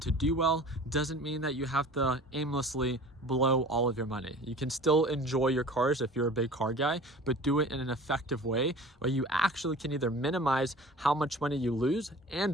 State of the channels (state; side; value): normal; both; correlation 0.42